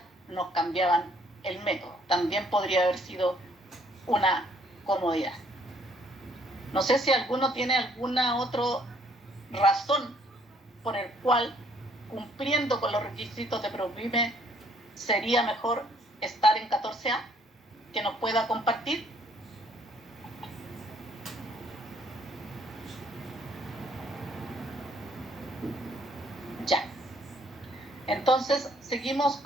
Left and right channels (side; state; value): both; normal; correlation 0.64